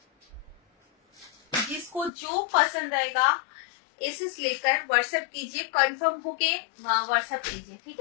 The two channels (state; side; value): drops out; right; at 2.1 s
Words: जिसको जो पसंद आएगा एसेस लेकर व्हाट्सएप कीजिए, कंफर्म होके व्हाट्सएप कीजिए, ठीक